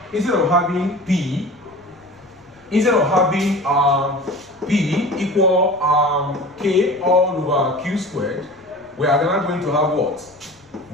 instead of having P, instead of having P equal K all over Q squared, we are now going to have what?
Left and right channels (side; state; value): left; noise; rumble, 30 dB below the sound